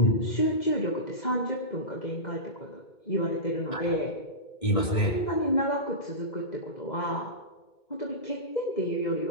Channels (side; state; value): right; late; 2.2 ms